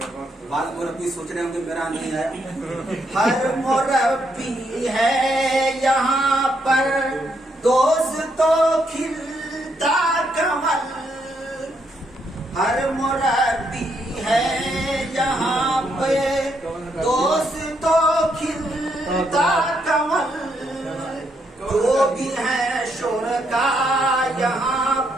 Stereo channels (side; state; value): both; normal; correlation 0.76